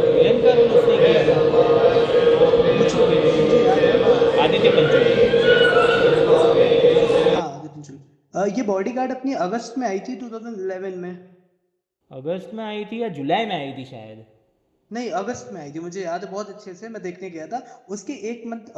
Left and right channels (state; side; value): identical; both; correlation 1.00